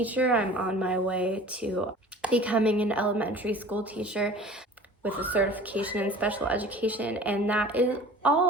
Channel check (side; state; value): both; normal; correlation 0.43